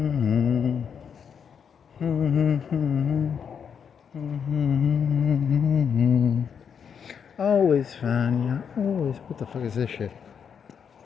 Always fine, yeah. Always. What the fuck is this shit?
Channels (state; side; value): quieter; right; 7.2 dB